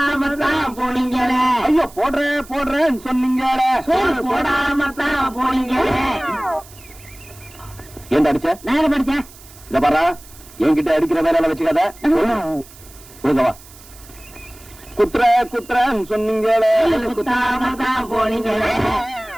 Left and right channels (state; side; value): noise; right; hiss, 21 dB below the sound